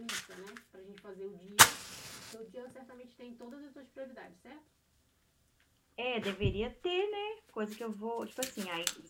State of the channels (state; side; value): identical; both; correlation 1.00